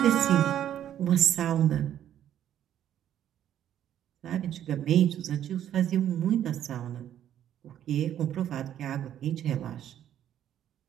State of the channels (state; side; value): quieter; left; 10.8 dB